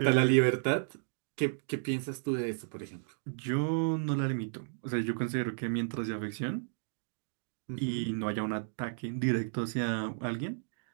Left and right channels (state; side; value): silent; left; digital silence